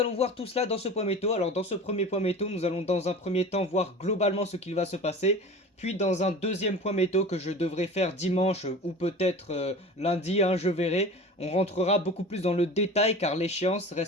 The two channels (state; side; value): normal; both; correlation 0.36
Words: voir tout cela dans ce point météo. Alors dans ce premier point météo, nous allons dans un premier temps voir globalement ce qu'il va se passer. Puis dans un deuxième point météo que je devrais faire dimanche ou peut-être lundi, je verrai, on rentrera beaucoup plus dans le détail car l'échéance